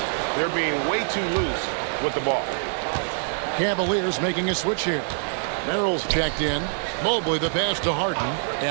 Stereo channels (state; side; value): silent; left; 62 dB below the other